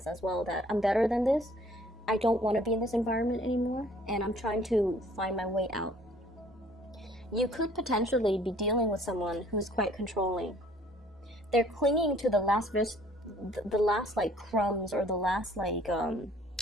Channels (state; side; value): normal; both; correlation 0.57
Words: as well that I'm better than this. I don't want to be in this environment anymore, and I'm trying to find my way out. You could potentially be dealing with someone who's quite controlling. They're clinging to the last like crumbs, or the last like